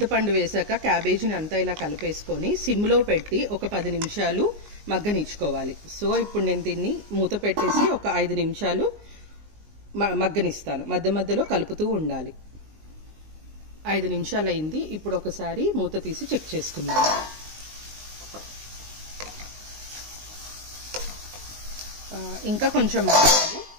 వేసాక క్యాబేజీని అంతా ఇలా కలిపేసుకొని సిమ్లో పెట్టి ఒక 10 నిమిషాలు మగ్గనిచ్చుకోవాలి. సో ఇప్పుడు నేను దీన్ని మూత పెట్టేసి ఒక 5 నిమిషాలు మగ్గనిస్తాను. మధ్య మధ్యలో కలుపుతూ ఉండాలి. 5 నిమిషాలు అయింది. ఇప్పుడు ఒకసారి మూత తీసి చెక్ చేసుకుందాం. ఇంకా కొంచెం మగ్గాలి.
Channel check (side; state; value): left; late; 19 ms